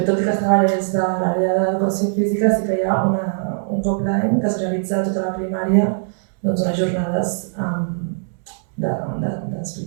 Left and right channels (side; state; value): left; silent; digital silence